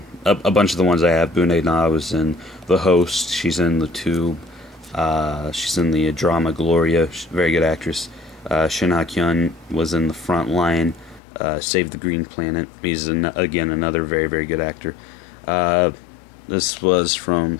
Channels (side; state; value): right; drops out; at 11.2 s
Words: A bunch of the ones I have. Bu Dae-na was in The Host. She's in The Tube. She's in the drama Gloria. She's a very good actress. Shin Ha-kyun was in The Front Line, Save the Green Planet. He's, again, another very, very good actor. This was from